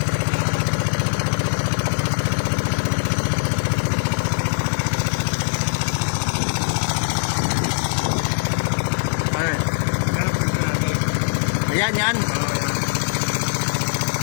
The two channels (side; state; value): right; silent; digital silence